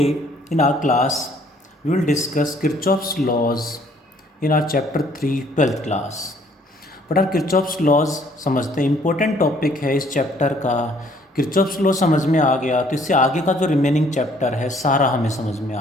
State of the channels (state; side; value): normal; both; correlation 0.61